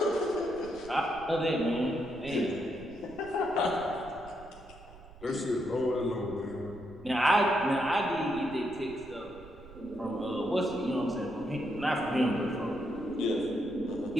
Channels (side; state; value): right; noise; rumble, 19 dB below the sound